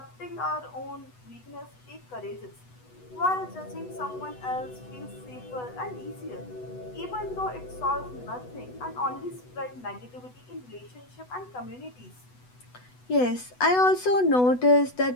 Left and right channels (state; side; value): late; right; 8.1 ms